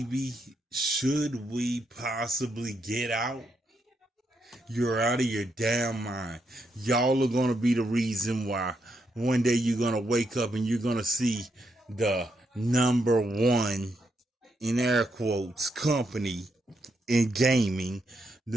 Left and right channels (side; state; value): both; normal; correlation 0.80